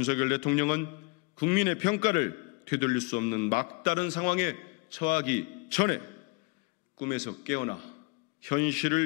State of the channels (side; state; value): right; quieter; 29.0 dB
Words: 대통령은 국민의 평가를 되돌릴 수 없는 막다른 상황에 처하기 전에 꿈에서 깨어나